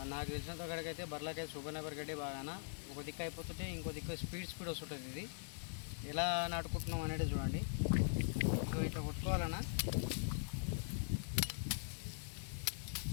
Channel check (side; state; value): right; silent; digital silence